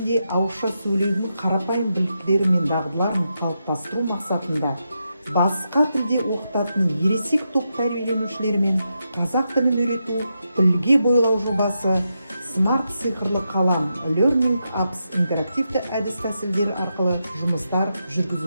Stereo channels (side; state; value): both; inverted; correlation -0.85